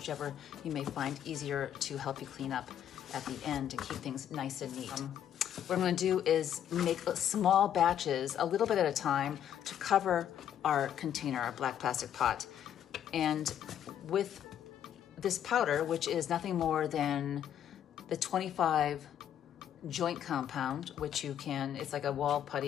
you may find easier to help you clean up at the end and keep things nice and neat. What I'm gonna do is make small batches, a little bit at a time, to cover our container, our black plastic pot. And with this powder, which is nothing more than the 25 joint compound, which you can, it's like a wall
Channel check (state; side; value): quieter; right; 10.0 dB